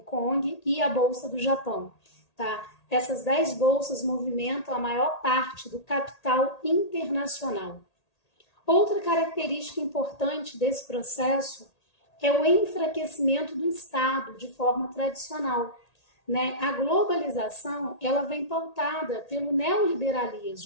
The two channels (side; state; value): right; late; 1.8 ms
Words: Kong, e a bolsa do Japão, tá? Essas 10 bolsas movimentam a maior parte do capital internacional. Outra característica importante desse processo é o enfraquecimento do Estado de forma tradicional, né? A globalização ela vem pautada pelo